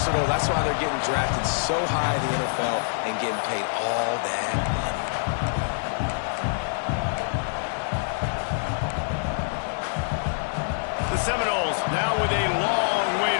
That's why they're getting drafted so high in the NFL and getting paid all that money. The Seminoles now with a long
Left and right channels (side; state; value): right; silent; digital silence